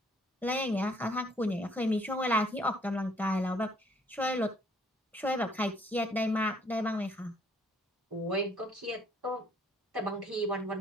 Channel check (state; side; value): normal; both; correlation 0.63